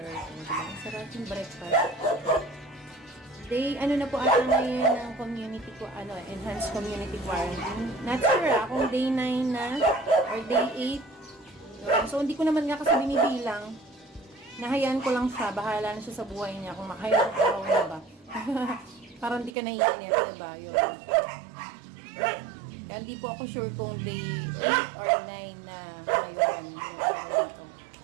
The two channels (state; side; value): drops out; left; at 19.5 s